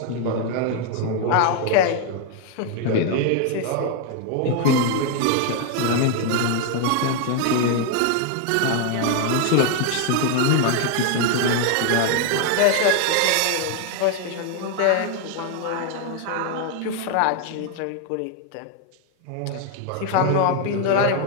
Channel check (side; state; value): both; different; correlation 0.00